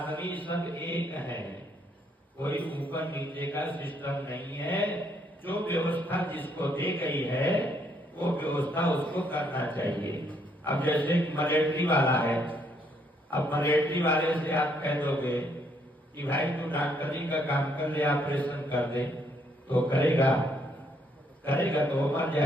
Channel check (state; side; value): normal; both; correlation 0.70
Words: सब एक है। कोई ऊपर नीचे का सिस्टम नहीं है। जो व्यवस्था जिसको दी गई है वो व्यवस्था उसको करना चाहिए। अब जैसे मलेट्री वाला है, अब मलेट्री वाले से आप कह दोगे कि भाई तू डॉक्टरी का काम कर ले, ऑपरेशन कर दे, तो करेगा तो वो मर